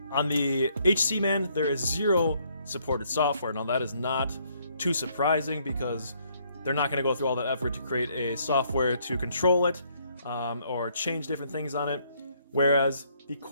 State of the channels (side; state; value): both; inverted; correlation -0.68